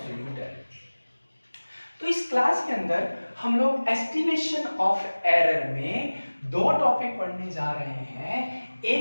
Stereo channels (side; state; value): both; inverted; correlation -1.00